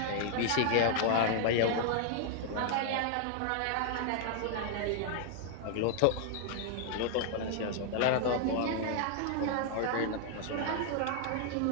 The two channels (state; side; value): different; both; correlation 0.00